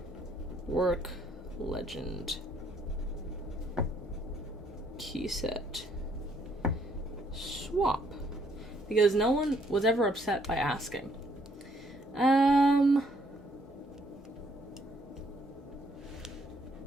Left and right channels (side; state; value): both; normal; correlation 0.67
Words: Work Legend key set swap. Because no one was ever upset by asking.